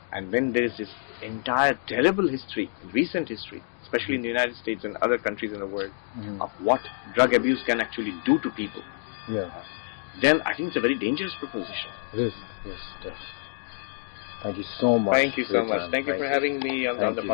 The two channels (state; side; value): silent; right; digital silence